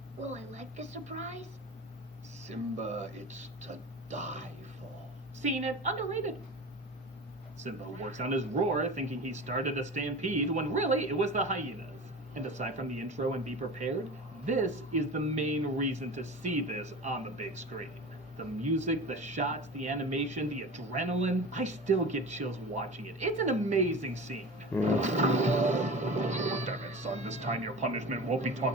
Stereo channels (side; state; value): both; normal; correlation 0.32